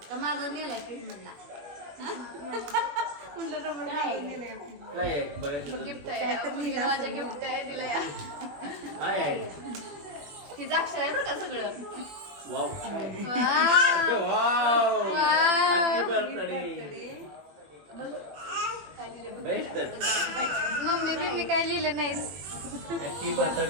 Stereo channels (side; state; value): left; late; 20 ms